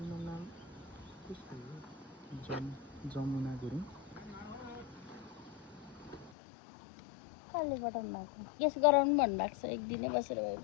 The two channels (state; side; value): drops out; right; at 6.3 s